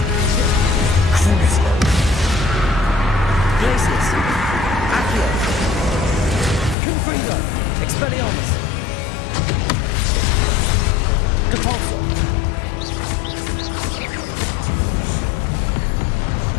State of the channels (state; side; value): drops out; right; at 6.8 s